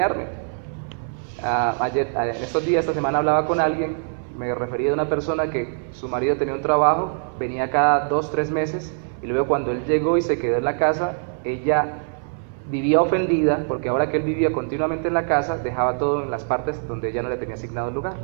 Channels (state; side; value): silent; left; digital silence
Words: En estos días, esta semana, hablaba con alguien, me refería a una persona que su marido tenía un trabajo, venía cada 2-3 meses, y luego cuando él llegó y se quedó en la casa, ella vivía ofendida, porque ahora que él vivía continuamente en la casa, dejaba todo en las partes donde ella no le tenía asignado el lugar.